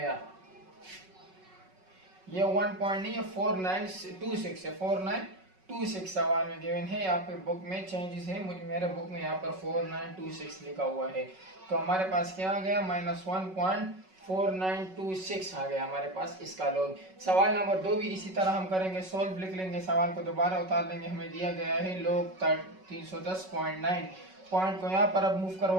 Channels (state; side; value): late; left; 5.3 ms